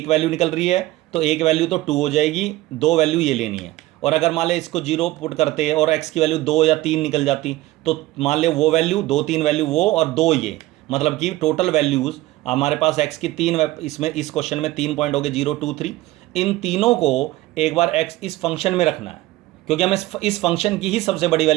वैल्यू निकल रही है तो एक वैल्यू तो 2 हो जाएगी, 2 वैल्यू ये लेनी है। और अगर मान ले इसको 0 पुट करते और x की वैल्यू 2 या 3 निकल जाती तो मान ले वो वैल्यू 2, 3 वैल्यू वो और 2 ये, मतलब कि टोटल वैल्यूज़ हमारे पास x की 3, इसमें इस क्वेश्चन में 3 पॉइंट हो गए 0, 2, 3। इन तीनों को एक बार x इस फंक्शन में रखना है, क्योंकि हमें इस फंक्शन की ही सबसे बड़ी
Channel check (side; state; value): left; quieter; 17.6 dB